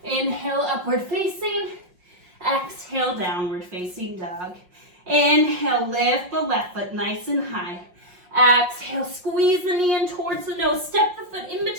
Inhale, upward facing. Exhale, downward facing dog. Inhale, lift the left foot nice and high. Exhale, squeeze the knee in towards the nose. Step the foot in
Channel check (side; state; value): left; late; 5.6 ms